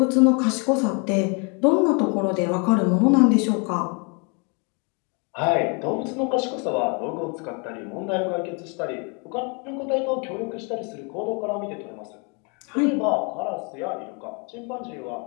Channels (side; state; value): right; quieter; 34.5 dB